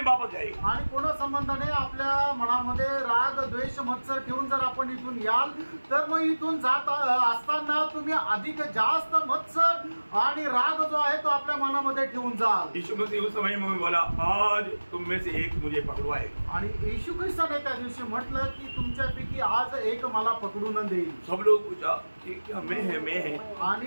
वापस जाएगा. आणि कोणा संबंधाने आपल्या मनामध्ये राग, द्वेष, मत्सर ठेवून जर आपण इथून याल, तर मग इथून जात असताना तुम्ही अधिक जास्त मत्सर आणि राग जो आहे तो आपल्या मनामध्ये ठेवून जाल. यीशु मसीह उस समय में बोला, आज तुम में से एक मुझे पकड़वाएगा. आणि येशू ख्रिस्ताने त्या दिवशी म्हटलं की तुमच्यापैकी आज एक मला पकडून देईल. सब लोग पूछा कि क्या मैं है.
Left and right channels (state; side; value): inverted; both; correlation -1.00